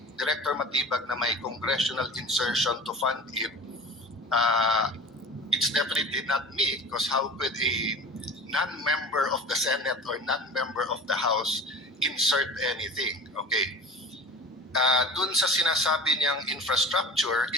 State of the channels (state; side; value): normal; both; correlation 0.37